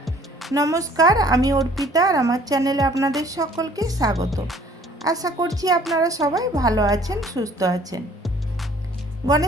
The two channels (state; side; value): normal; both; correlation 0.55